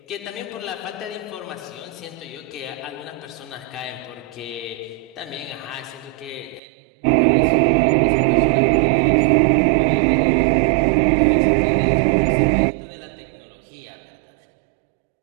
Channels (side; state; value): left; drops out; at 6.6 s